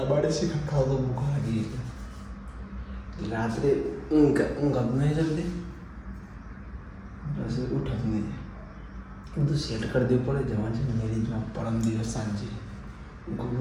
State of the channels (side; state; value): both; identical; correlation 1.00